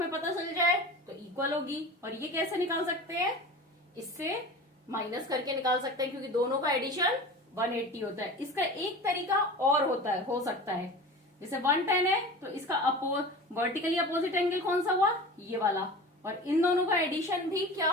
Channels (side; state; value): both; normal; correlation 0.35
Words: पता चल जाए तो इक्वल होगी, और ये कैसे निकाल सकते हैं? इससे माइनस करके निकाल सकते हैं, क्योंकि दोनों का एडिशन 180 होता है। इसका एक तरीका और होता है, हो सकता है, जैसे 110 है तो इसका वर्टिकली अपोजिट एंगल कौन सा हुआ? ये वाला, और इन दोनों का एडिशन भी क्या